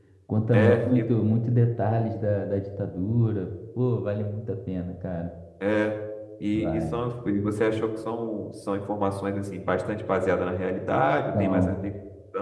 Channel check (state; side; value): identical; both; correlation 1.00